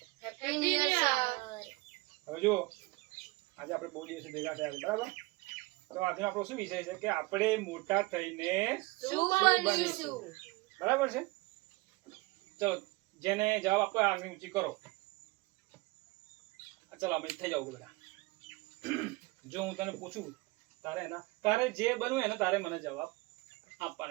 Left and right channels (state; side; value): quieter; left; 22.8 dB